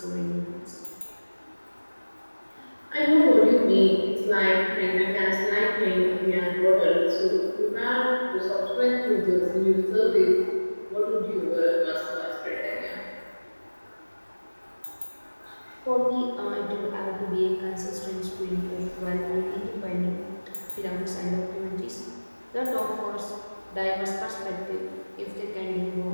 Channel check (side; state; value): both; inverted; correlation -1.00